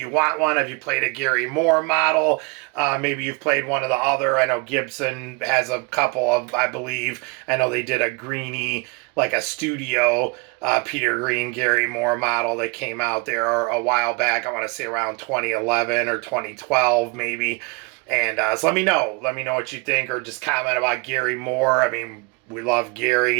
want one? Have you played a Gary Moore model? Maybe you've played one of the other. I know Gibson has a couple of, I believe. I know they did a Greenie, like a studio Peter Green Gary Moore model that came out there a while back. I want to say around 2011 or 2012 maybe. And so let me know. Let me know what you think, or just comment about Gary Moore. I mean, we love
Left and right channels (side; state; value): left; quieter; 28.9 dB